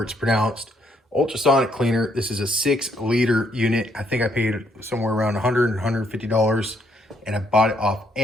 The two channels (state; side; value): normal; both; correlation 0.71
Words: it's pronounced, ultrasonic cleaner. This is a 6-liter unit. I think I paid somewhere around $100, $150, and I bought it off